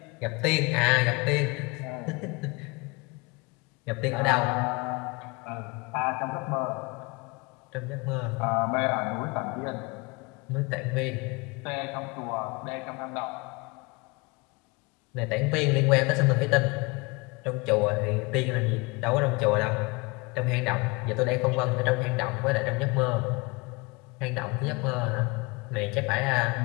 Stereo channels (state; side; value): quieter; right; 27.1 dB